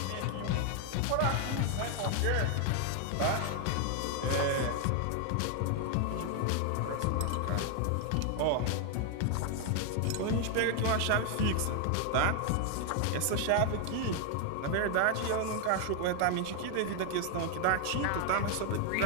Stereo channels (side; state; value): both; different; correlation 0.00